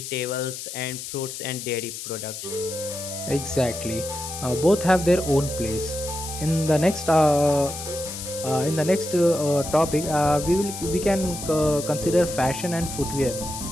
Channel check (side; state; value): left; noise; hiss, 9 dB below the sound